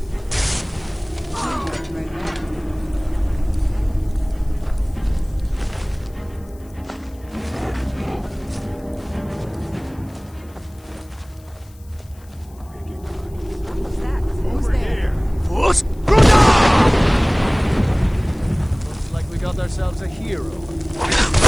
What's that? Who's there? Looks like we got ourselves a hero.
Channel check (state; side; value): noise; left; hiss, 28 dB below the sound